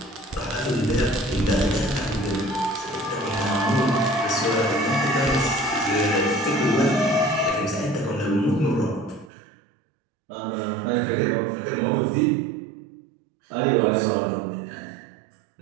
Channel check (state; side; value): drops out; left; at 9.3 s